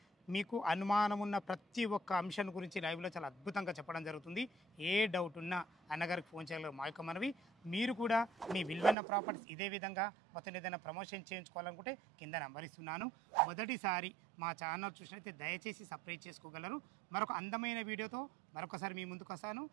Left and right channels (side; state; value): left; drops out; at 9.0 s